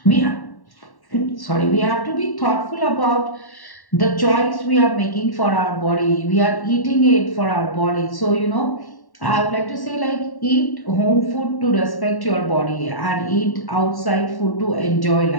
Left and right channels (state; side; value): late; right; 1.1 ms